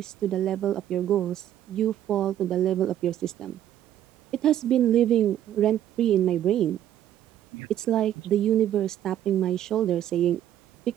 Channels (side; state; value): left; quieter; 11.4 dB